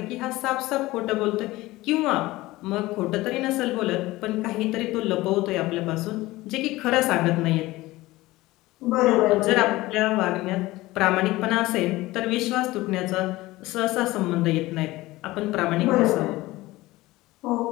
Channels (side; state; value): right; quieter; 18.8 dB